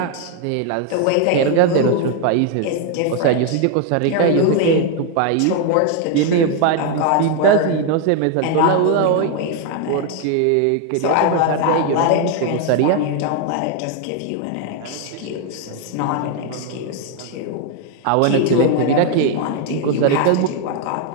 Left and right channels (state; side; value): different; both; correlation 0.01